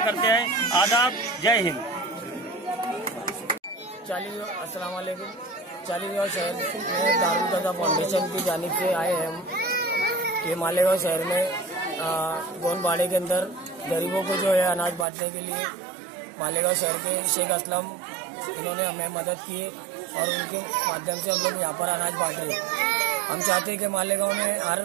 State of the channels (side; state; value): left; drops out; at 15.1 s